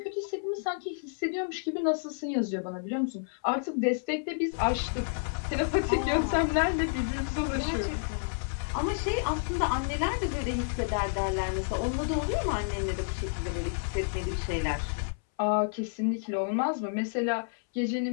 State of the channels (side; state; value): right; silent; 58 dB below the other